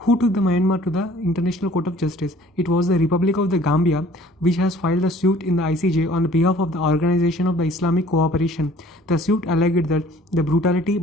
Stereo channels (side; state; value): both; normal; correlation 0.53